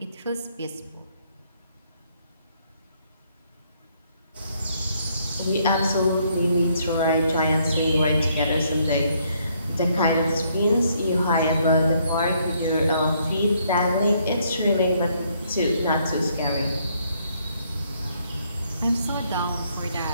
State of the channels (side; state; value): both; inverted; correlation -0.70